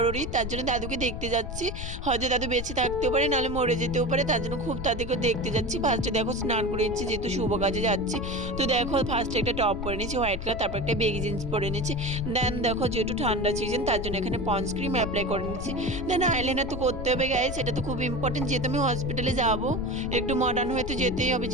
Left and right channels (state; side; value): noise; left; rumble, 7 dB below the sound